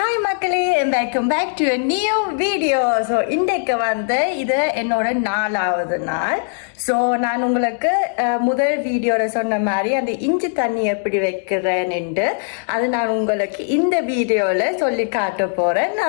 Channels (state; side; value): silent; right; digital silence